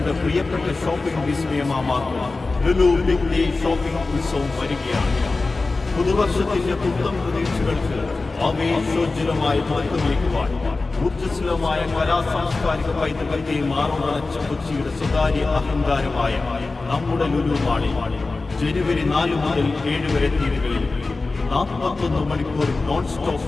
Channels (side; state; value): right; quieter; 3.6 dB